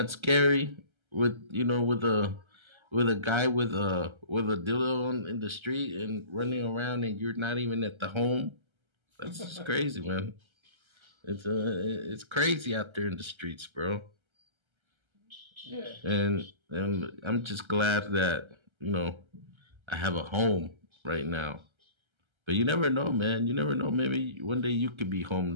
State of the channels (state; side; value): late; left; 1.3 ms